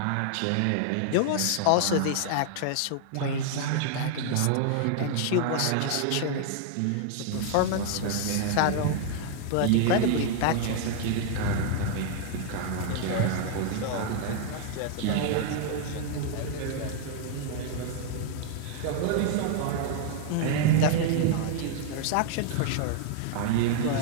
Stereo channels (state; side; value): different; both; correlation 0.00